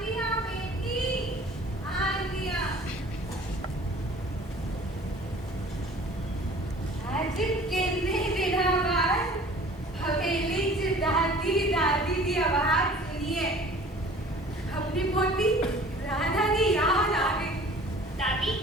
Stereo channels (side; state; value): both; normal; correlation 0.48